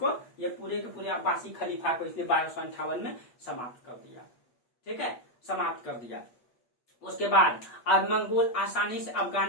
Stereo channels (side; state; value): right; late; 8.3 ms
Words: ये पूरे के पूरे अब्बासी खलीफा को इसने 1258 में समाप्त कर दिया। ठीक है, समाप्त कर दिया। उसके बाद अब मंगोल आसानी से